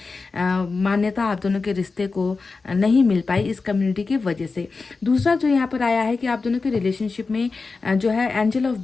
मान्यता आप दोनों के रिश्ते को नहीं मिल पाई इस कम्युनिटी की वजह से। दूसरा जो यहाँ पर आया है कि आप दोनों के रिलेशनशिप में जो है एंजल ऑफ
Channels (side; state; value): right; quieter; 4.2 dB